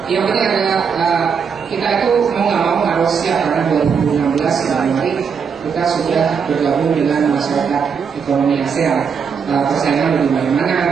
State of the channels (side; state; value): left; quieter; 6.4 dB